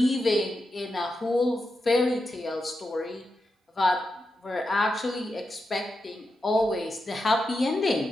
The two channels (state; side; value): normal; both; correlation 0.88